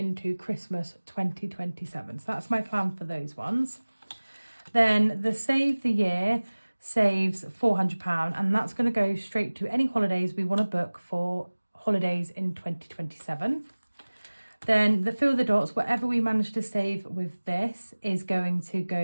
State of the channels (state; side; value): inverted; both; correlation -1.00